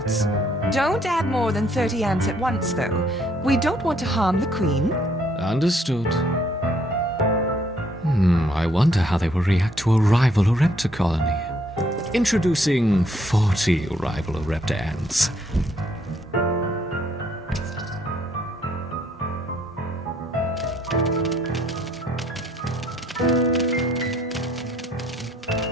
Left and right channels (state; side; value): normal; both; correlation 0.67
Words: Don't add more than 30 ants at once, though. We don't want to harm the queen. Understood. I wonder how they will react to a rival Ereptor colony. Introducing 40 rival Ereptor ants.